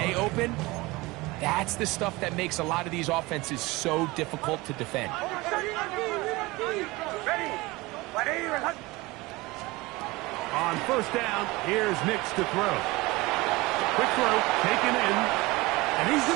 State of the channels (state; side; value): quieter; left; 22.0 dB